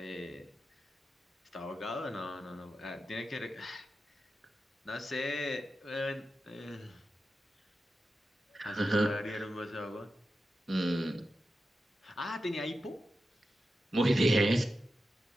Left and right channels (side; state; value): both; normal; correlation 0.91